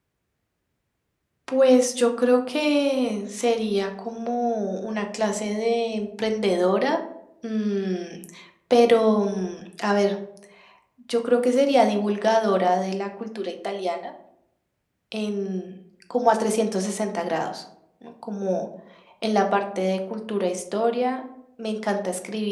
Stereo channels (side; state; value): both; identical; correlation 1.00